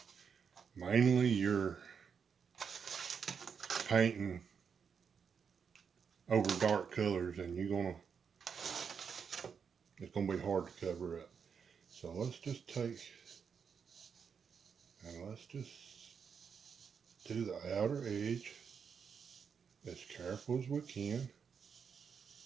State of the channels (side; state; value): left; quieter; 6.6 dB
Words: mainly you're painting over dark colors, and it's gonna be hard to cover up. So let's just take, and let's just do the outer edge as careful as we can.